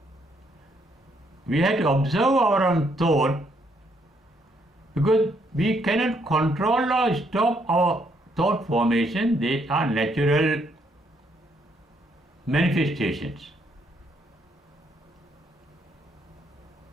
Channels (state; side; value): normal; both; correlation 0.72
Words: We have to observe our own thought because we cannot control or stop our thought formation. They are natural manifestations.